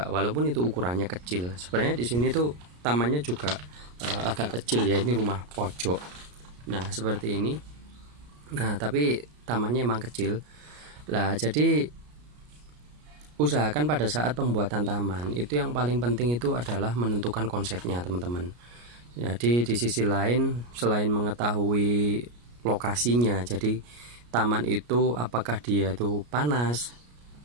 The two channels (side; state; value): left; late; 33 ms